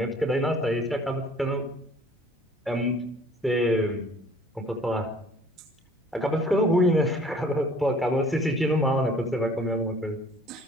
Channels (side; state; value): both; normal; correlation 0.53